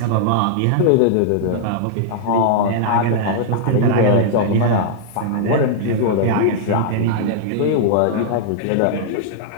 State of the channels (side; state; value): both; different; correlation -0.01